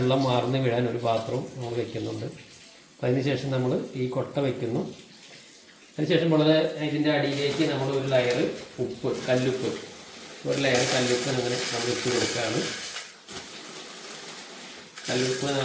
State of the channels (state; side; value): identical; both; correlation 1.00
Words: വാർന്ന് വീഴാൻ ഒരു പാത്രവും നമ്മൾ വയ്ക്കുന്നുണ്ട്. അപ്പോൾ അതിനുശേഷം നമ്മൾ ഈ കൊട്ട വയ്ക്കുന്നു. അതിനുശേഷം ഇതിൻ്റെ അടിയിലേക്ക് നമ്മൾ ഒരു ലെയർ ഉപ്പ്, കല്ലുപ്പ്, ഒരു ലെയർ കല്ലുപ്പ് അങ്ങനെ നമ്മൾ ഇട്ട് കൊടുക്കുകയാണ്. കല്ലുപ്പ്